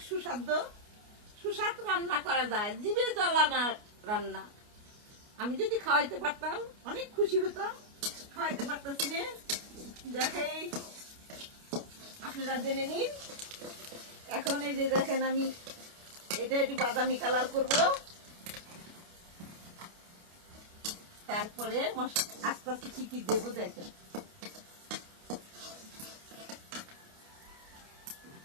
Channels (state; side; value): late; left; 29 ms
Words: সুস্বাদু রান্না করা যায়। জিভে জ্বালানা রান্না। আমি যদি খাওয়াইতে পারতাম অনেক খুশি হতাম। খাওয়াইতে পারতেছি না, দেখাই আপনারা জেনে নিন। এখন এই যে দেখেন, আমি এটা একটু বাদামি কালার করব। তারপরে আস্তে আস্তে কি কি দেবো দেখেন।